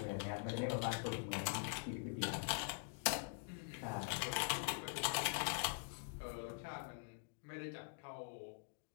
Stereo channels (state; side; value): silent; right; digital silence